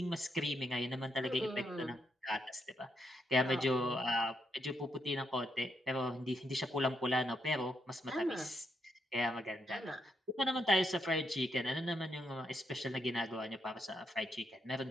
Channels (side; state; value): both; normal; correlation 0.79